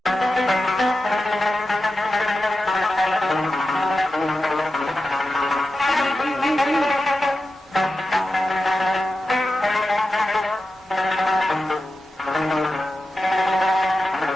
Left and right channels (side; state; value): both; normal; correlation 0.92